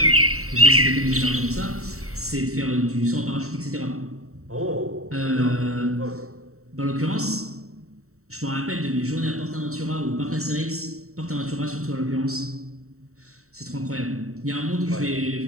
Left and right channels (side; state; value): left; late; 0.64 ms